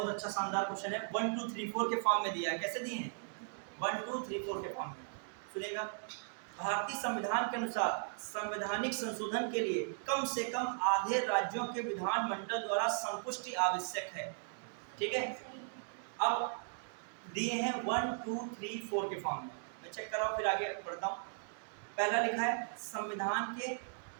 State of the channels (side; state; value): left; silent; digital silence